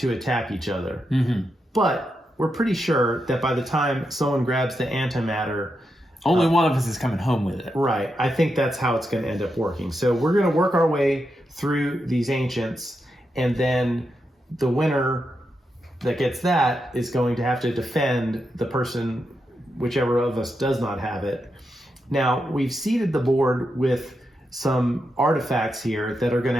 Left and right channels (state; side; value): normal; both; correlation 0.85